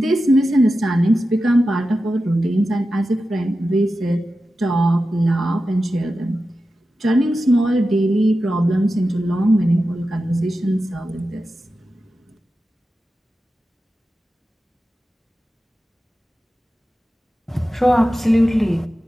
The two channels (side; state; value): both; normal; correlation 0.92